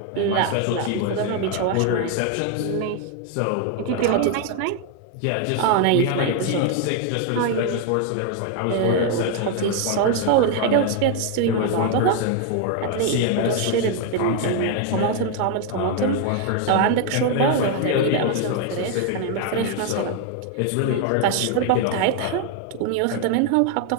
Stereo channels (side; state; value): both; different; correlation 0.01